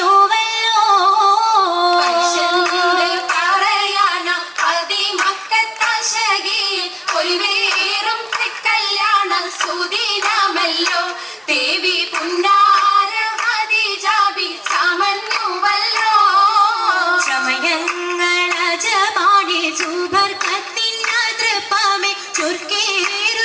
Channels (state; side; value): identical; both; correlation 1.00